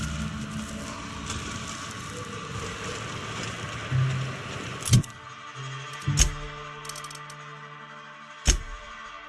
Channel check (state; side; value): identical; both; correlation 1.00